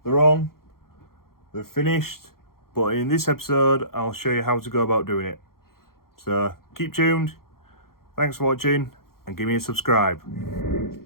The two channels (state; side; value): late; right; 0.93 ms